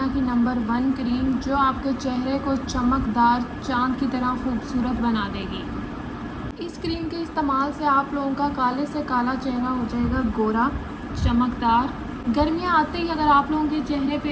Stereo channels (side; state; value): both; identical; correlation 1.00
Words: की नंबर 1 क्रीम जो आपके चेहरे को चमकदार चाँद की तरह खूबसूरत बना देगी। इस क्रीम के इस्तेमाल से आप लोगों का काले से काला चेहरा हो जाएगा गोरा, चमकदार। गर्मियाँ आते ही अगर आप लोगों के चेहरे पे